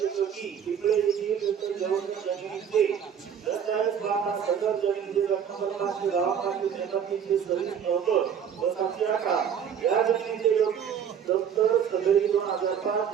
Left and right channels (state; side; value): quieter; left; 8.1 dB